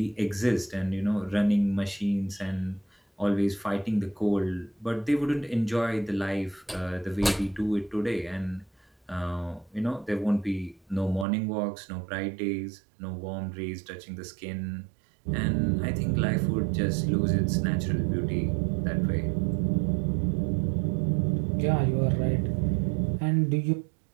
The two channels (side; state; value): left; drops out; at 11.2 s